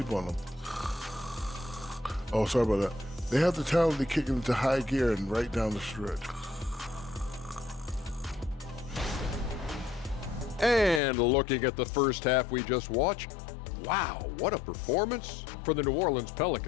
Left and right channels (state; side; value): drops out; right; at 11.0 s